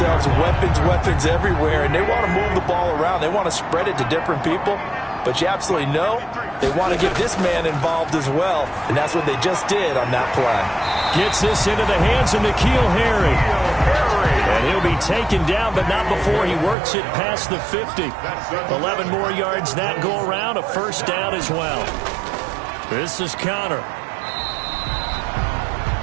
weapons everywhere, and they want to move the ball around. They want to spread it to different people, but you absolutely know they want to get this man involved as well, and that's what they just did on that play. Gets this into the hands of N'Keal Harry. And he'll be taken down, but not before he works it past the 50. 11 more yards that go around, a first down as well. This is Connor.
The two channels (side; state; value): left; drops out; at 16.8 s